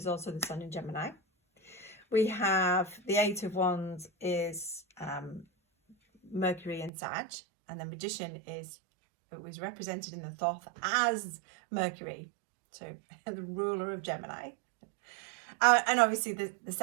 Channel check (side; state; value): left; drops out; at 6.9 s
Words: also the Sun in Gemini. We have the Eight of Wands is Mercury in Sag, and the Magician it was represented in the Thoth as Mercury, so the ruler of Gemini. And obviously the